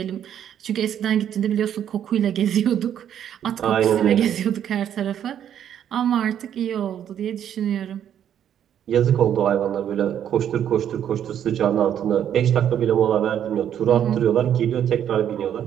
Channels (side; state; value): left; quieter; 9.7 dB